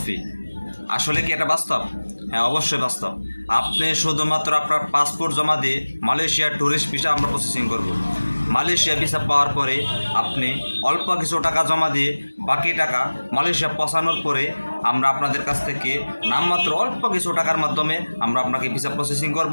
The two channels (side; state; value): both; inverted; correlation -1.00